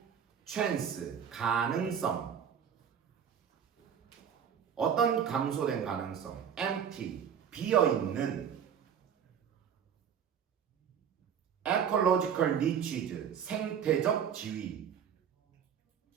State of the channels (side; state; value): left; quieter; 8.1 dB